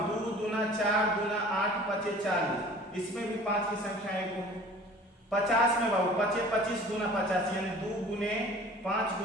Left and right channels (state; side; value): normal; both; correlation 0.46